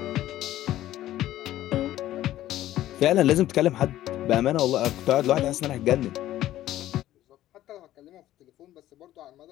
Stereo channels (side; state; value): right; quieter; 13.8 dB